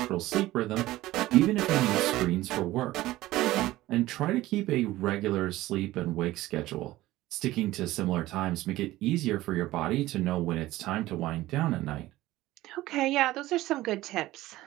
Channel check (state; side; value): quieter; left; 16.7 dB